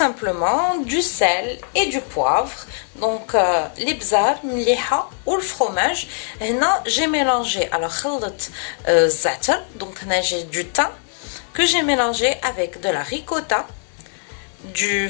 simplement, du sel et du poivre. Donc les bzar, mliha ou le fromage. Là, j'ai mélangé alors خلط za'atar. Donc là j'ai du thym que j'ai mélangé avec de la ricotta, du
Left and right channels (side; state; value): right; silent; 65 dB below the other